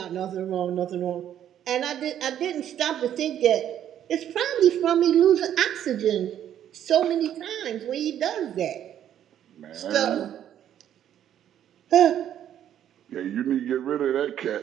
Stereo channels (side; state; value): left; quieter; 10.5 dB